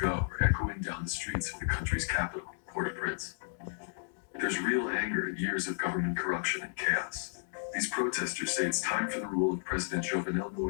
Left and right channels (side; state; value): right; silent; digital silence